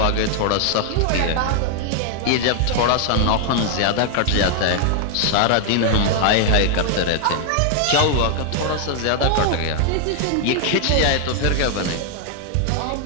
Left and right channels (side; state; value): both; different; correlation 0.00